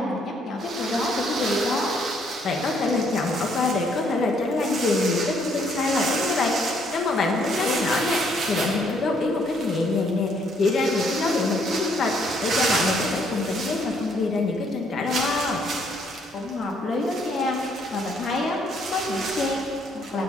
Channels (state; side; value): normal; both; correlation 0.68